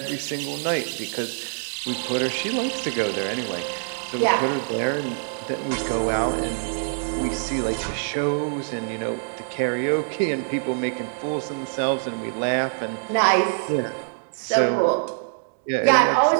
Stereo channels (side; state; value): left; silent; digital silence